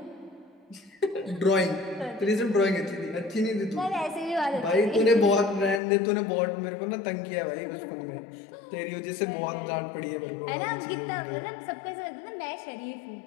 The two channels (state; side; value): drops out; right; at 5.8 s